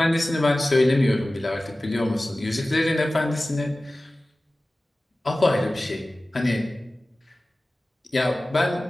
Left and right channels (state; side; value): normal; both; correlation 0.97